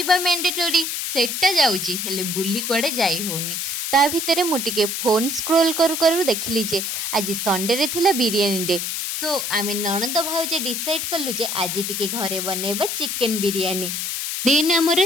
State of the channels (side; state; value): left; noise; hiss, 3 dB below the sound